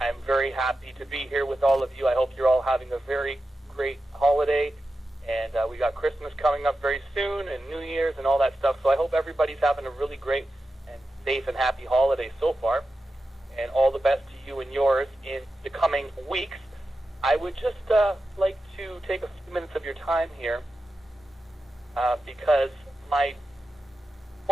very happy to be here with all of you. I hope you're all having a very great holiday. And we got Christmas coming up very soon and New Year's and all that stuff. So I hope everybody's having a really great and safe and happy holiday so far. And all the best to you and yours in the coming weeks. I would just like to take a few minutes of your time here because my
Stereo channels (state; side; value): normal; both; correlation 0.91